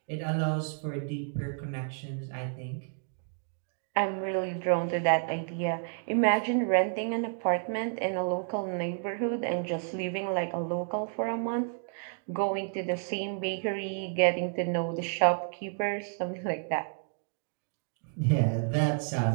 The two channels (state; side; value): silent; left; 57 dB below the other